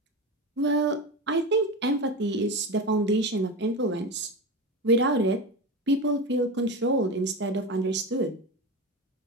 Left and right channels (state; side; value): normal; both; correlation 0.22